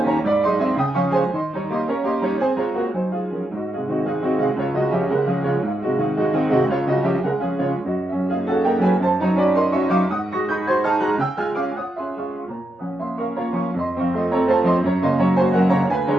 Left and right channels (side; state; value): both; normal; correlation 0.85